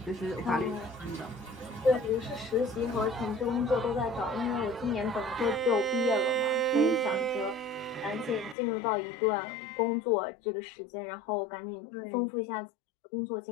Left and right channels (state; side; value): drops out; right; at 8.6 s